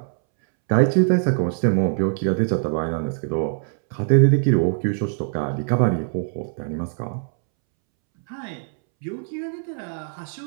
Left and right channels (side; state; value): left; silent; 64 dB below the other